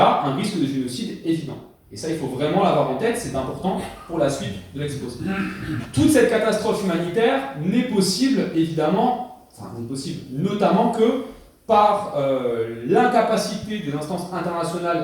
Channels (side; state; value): both; identical; correlation 1.00